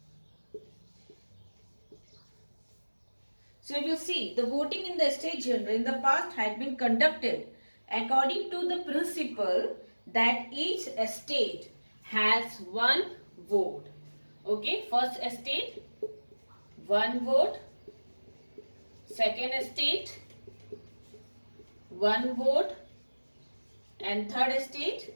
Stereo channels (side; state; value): both; inverted; correlation -1.00